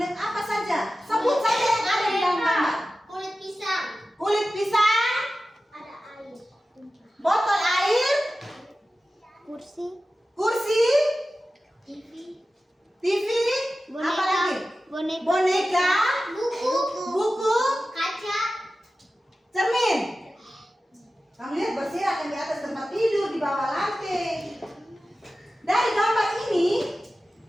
apa saja? Sebut saja yang ada di dalam gambar. Kulit pisang. Kulit pisang, Ada air. botol air, Kursi. kursi, TV. TV, apa lagi? Boneka, Buku. buku, Kaca. cermin. Kamu lihat berserakan di atas tempat tidur, di bawah lantai. Dari gambar ini,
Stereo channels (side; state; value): both; normal; correlation 0.95